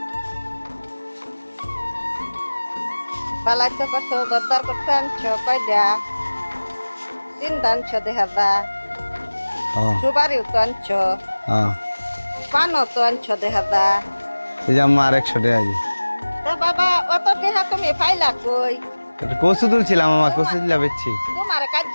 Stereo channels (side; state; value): both; inverted; correlation -1.00